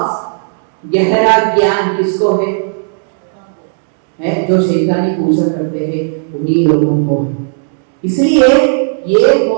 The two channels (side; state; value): left; silent; digital silence